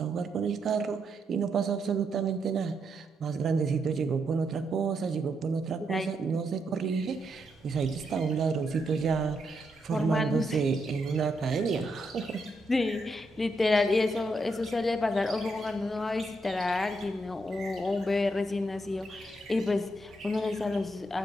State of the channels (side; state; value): both; normal; correlation 0.80